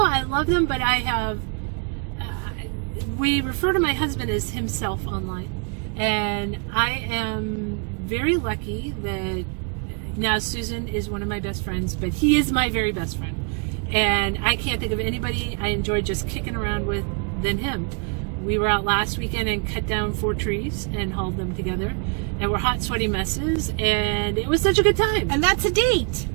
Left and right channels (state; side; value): quieter; left; 37.2 dB